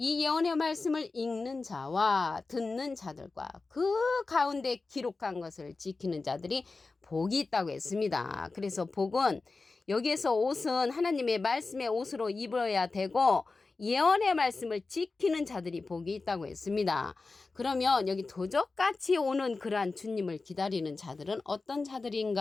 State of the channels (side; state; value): right; quieter; 3.8 dB